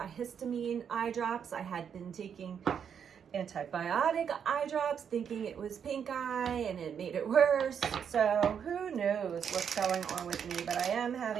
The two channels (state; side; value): quieter; left; 7.7 dB